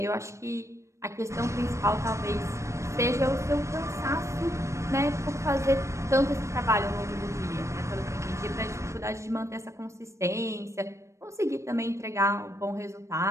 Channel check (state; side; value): late; left; 0.14 ms